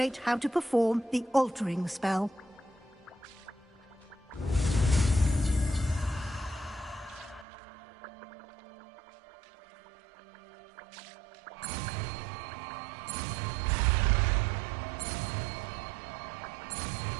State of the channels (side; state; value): left; drops out; at 7.5 s